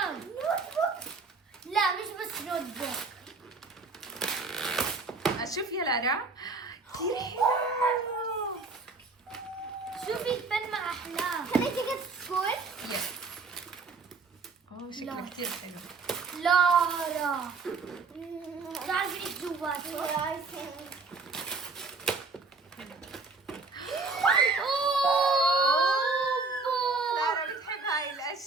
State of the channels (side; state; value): left; quieter; 4.1 dB